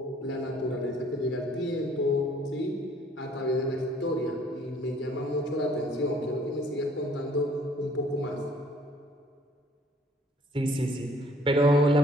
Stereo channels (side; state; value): both; normal; correlation 0.58